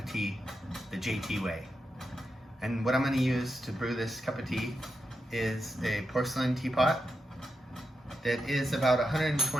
tea the JT way. And what I'm going to use to brew this cup of tea is a porcelain teapot that is about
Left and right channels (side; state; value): both; normal; correlation 0.87